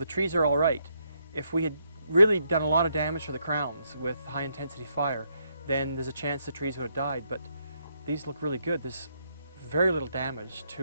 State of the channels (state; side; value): inverted; both; correlation -0.76